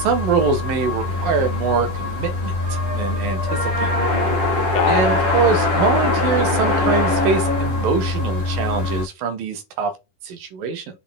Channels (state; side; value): late; left; 10 ms